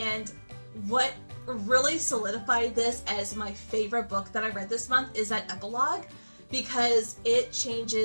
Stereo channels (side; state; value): both; inverted; correlation -1.00